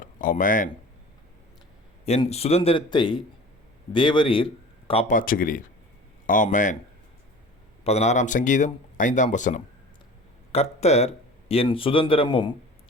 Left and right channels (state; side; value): normal; both; correlation 0.40